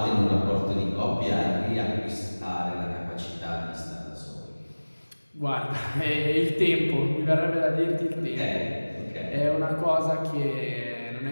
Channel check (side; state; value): both; inverted; correlation -1.00